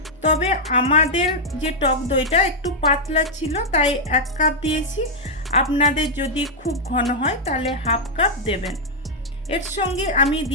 তবে আমাদের যে টক দইটা একটু পাতলা ছিল তাই 1 কাপ দিয়েছি। আপনাদের যদি খুব ঘন হয় তাহলে হাফ কাপ দেবেন। এর সঙ্গে আমি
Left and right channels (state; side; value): normal; both; correlation -0.04